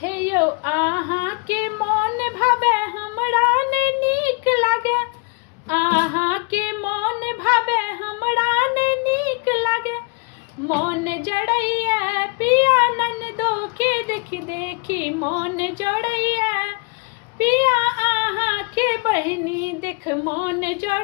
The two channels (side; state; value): right; quieter; 33.2 dB